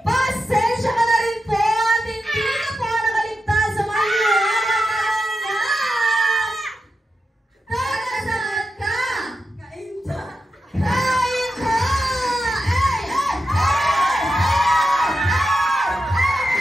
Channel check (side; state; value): both; normal; correlation 0.89